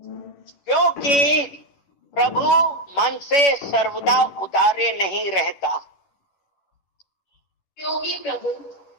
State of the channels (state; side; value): late; right; 11 ms